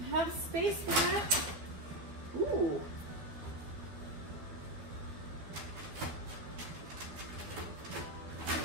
have space for that. Ooh.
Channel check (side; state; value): left; late; 12 ms